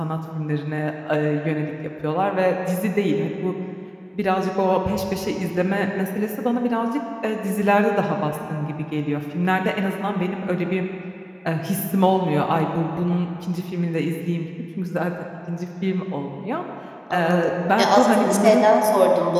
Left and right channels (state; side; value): identical; both; correlation 1.00